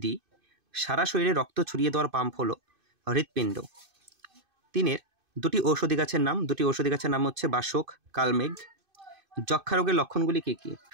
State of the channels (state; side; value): late; left; 2.5 ms